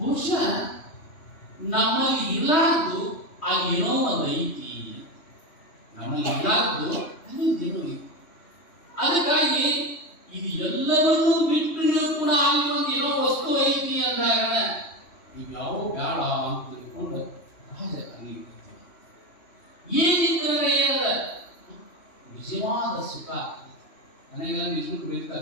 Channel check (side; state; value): right; late; 2.8 ms